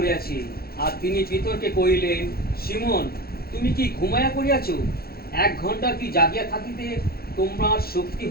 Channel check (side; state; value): right; late; 0.44 ms